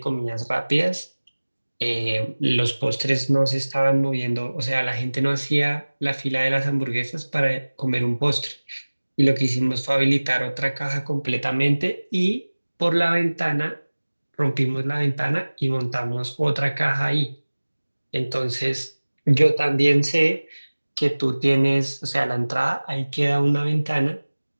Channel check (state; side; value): inverted; both; correlation -1.00